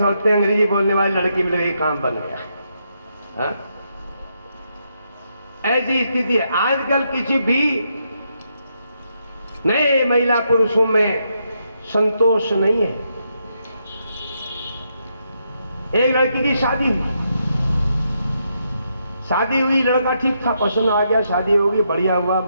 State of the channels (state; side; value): inverted; both; correlation -0.79